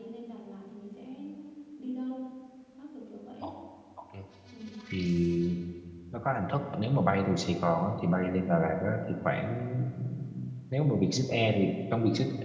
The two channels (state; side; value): identical; both; correlation 1.00